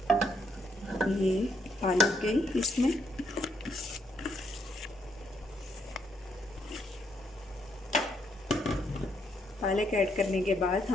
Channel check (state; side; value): normal; both; correlation 0.74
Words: ये पालक गई इसमें। पालक ऐड करने के बाद